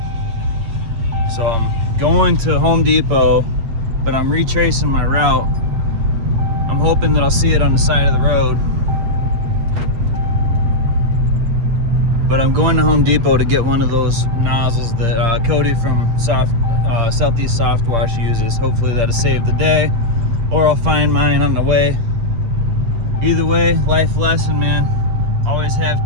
So I'm going to Home Depot, but I'm retracing my route. I'm hoping that I'll see it on the side of the road. But I'm going to Home Depot to get one of those nozzles that Cody from Southeast Soft Wash uses. Hopefully that'll save the day, or I'll find mine on the way. Either way, life lesson, man. Always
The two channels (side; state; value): left; late; 8.8 ms